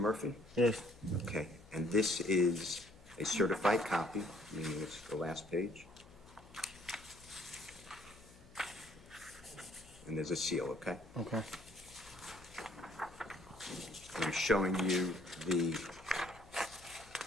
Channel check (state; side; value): noise; left; hum, 22 dB below the sound